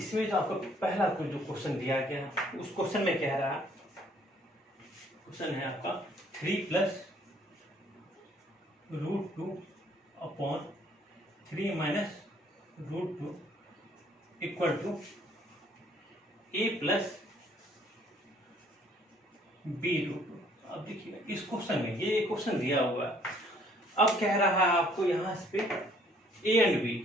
जो आपको पहला जो क्वेश्चन दिया गया, उस क्वेश्चन में कह रहा है, क्वेश्चन है आपका 3 plus √2 upon 3 minus √2 equal to a plus b √2। अब देखिए इस क्वेश्चन में ये क्वेश्चन दिया हुआ है। अब कह रहा है आपको यहाँ पे ए एंड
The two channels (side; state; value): both; normal; correlation 0.61